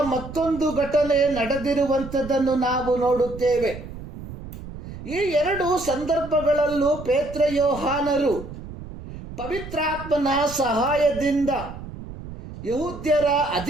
ಮತ್ತೊಂದು ಘಟನೆ ನಡೆದಿರುವಂಥದ್ದನ್ನು ನಾವು ನೋಡುತ್ತೇವೆ. ಈ ಎರಡು ಸಂದರ್ಭಗಳಲ್ಲೂ ಪೇತ್ರ ಯೋಹಾನರು ಪವಿತ್ರಾತ್ಮನ ಸಹಾಯದಿಂದ ಯಹೂದ್ಯರ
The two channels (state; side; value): noise; right; rumble, 12 dB below the sound